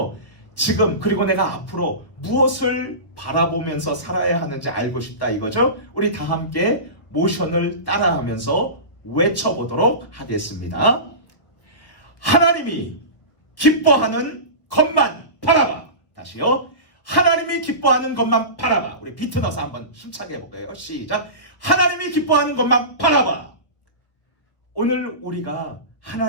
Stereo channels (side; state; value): right; late; 1.4 ms